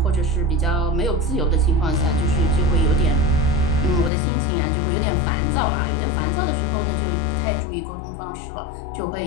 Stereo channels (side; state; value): right; drops out; at 4.1 s